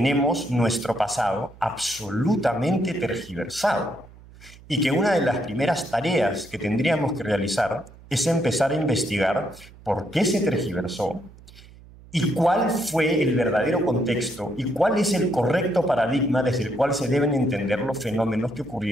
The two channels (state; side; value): noise; right; hum, 22 dB below the sound